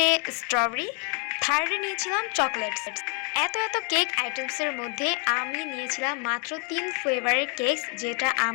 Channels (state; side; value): quieter; right; 35.8 dB